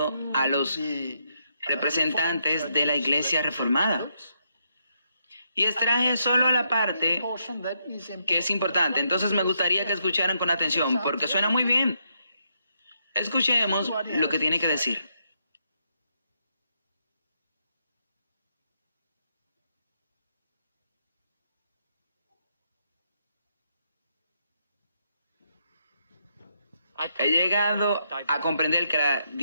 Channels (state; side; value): inverted; both; correlation -0.78